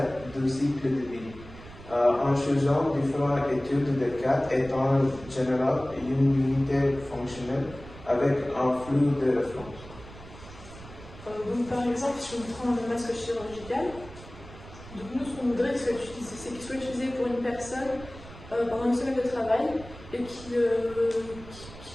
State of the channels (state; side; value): noise; right; rumble, 17 dB below the sound